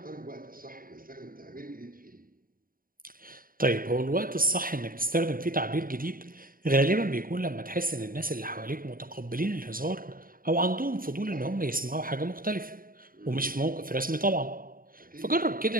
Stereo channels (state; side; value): late; left; 0.41 ms